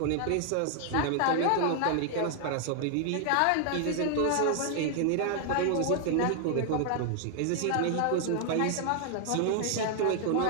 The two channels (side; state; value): both; different; correlation 0.00